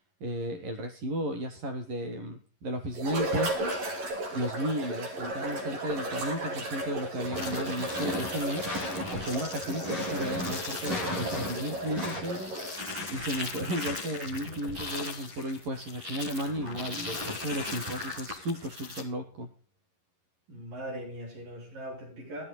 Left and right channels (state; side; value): late; left; 11 ms